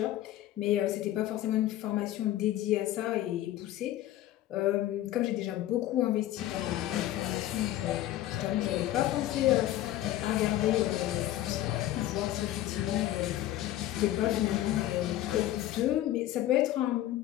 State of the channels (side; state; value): right; quieter; 13.9 dB